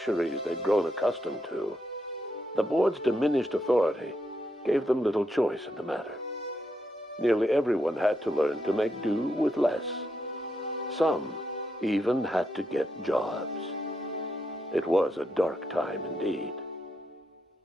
they'd grown accustomed to, the board's diminished authority gave them little choice in the matter. Nearly everyone had to learn to make do with less. Some even had to get jobs. It was a dark time indeed.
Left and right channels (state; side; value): normal; both; correlation 0.81